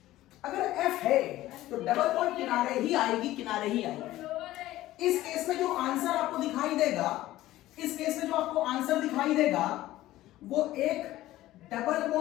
अगर F है तो डबल बॉन्ड किनारे ही आएगी, किनारे ही आएगी। इस केस में जो आंसर आपको दिखाई देगा, इस केस में जो आपको आंसर दिखाई देगा वो एक डबल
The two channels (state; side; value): quieter; right; 15.6 dB